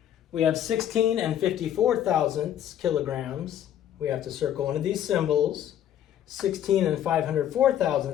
We have 16 and 54 thousandths kilograms. We have to circle one of these symbols. 16 and 504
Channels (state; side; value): quieter; right; 10.7 dB